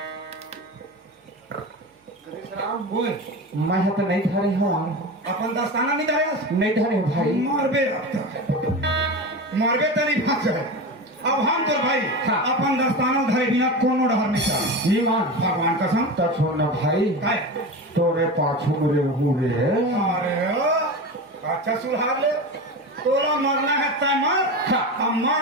ओए मैं तो नहीं धरे हूँ अपन दस्ताना नहीं धरे नहीं धरे भाई मारबे मारबे तो नहीं फंस है अब हम तो भाई हाँ। अपन दस्ताना धरे बिना कोनो डहर नहीं था ईमान भगवान कसम तो छोड़ना भाई काय तोरे पाछू मेरे हुए अरे अच्छा सुधार ले तोरा मरना है तय मर हाँ। अब मैं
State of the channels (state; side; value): normal; both; correlation 0.26